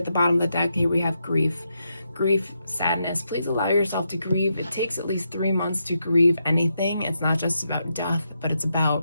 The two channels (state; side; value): inverted; both; correlation -0.83